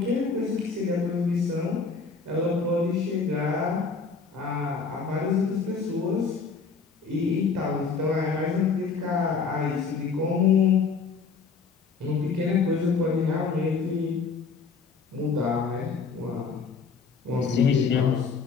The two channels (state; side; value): quieter; right; 5.1 dB